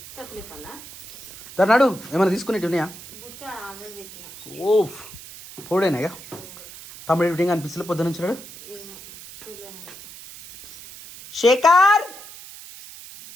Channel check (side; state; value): right; noise; hiss, 16 dB below the sound